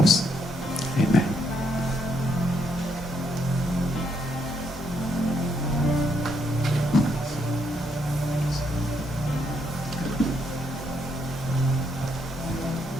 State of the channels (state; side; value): normal; both; correlation 0.75